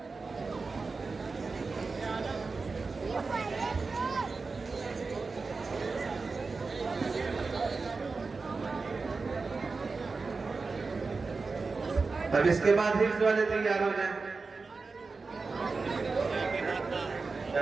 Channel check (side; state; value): left; quieter; 4.2 dB